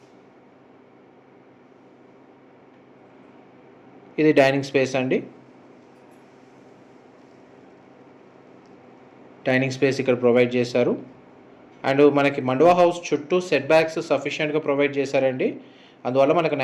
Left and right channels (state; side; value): identical; both; correlation 1.00